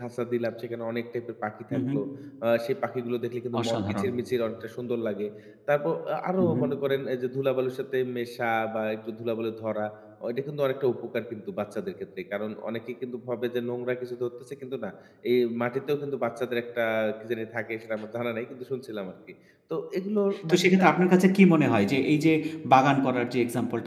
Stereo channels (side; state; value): both; identical; correlation 1.00